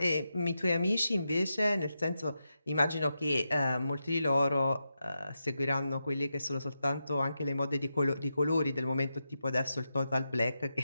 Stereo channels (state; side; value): inverted; both; correlation -0.88